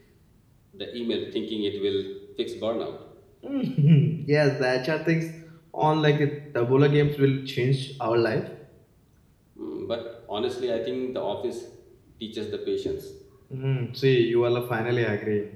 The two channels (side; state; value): both; identical; correlation 1.00